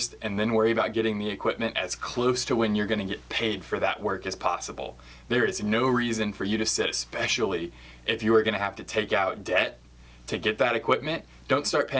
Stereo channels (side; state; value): both; identical; correlation 1.00